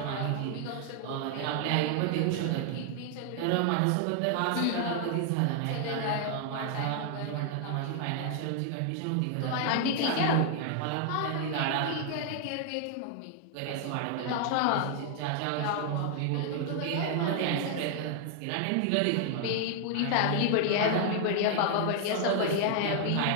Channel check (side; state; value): both; different; correlation 0.00